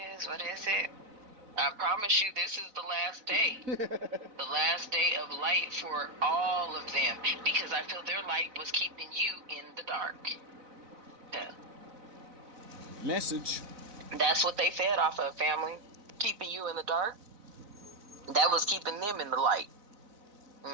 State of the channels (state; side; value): late; left; 4.0 ms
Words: is. What is it? I promise you, this is the last day. The last day of light for all of them. Because I feel their light was keeping you in the dark. Yeah. Message. That's what they fed off of, family. Keeping you in the dark. That was keeping them in the light.